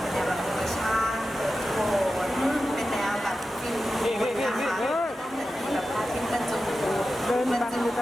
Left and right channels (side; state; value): both; normal; correlation 0.92